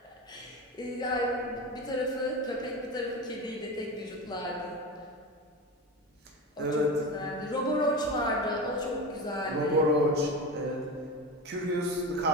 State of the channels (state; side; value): normal; both; correlation 0.25